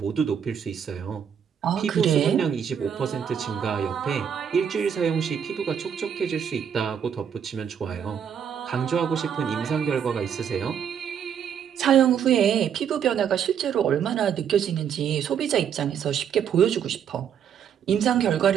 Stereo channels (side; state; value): left; quieter; 8.2 dB